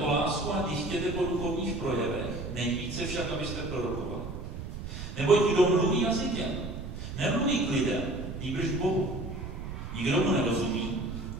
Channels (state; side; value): noise; right; rumble, 8 dB below the sound